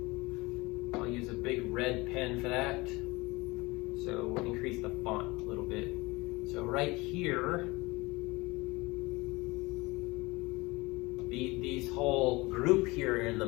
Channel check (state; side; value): quieter; right; 23.0 dB